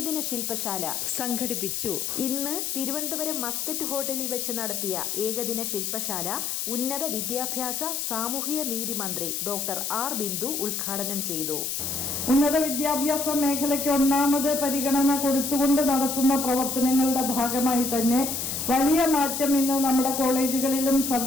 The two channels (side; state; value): left; noise; hiss, 2 dB below the sound